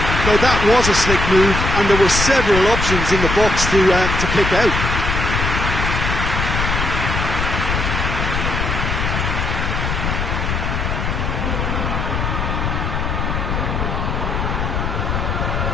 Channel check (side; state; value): left; noise; rumble, 1 dB below the sound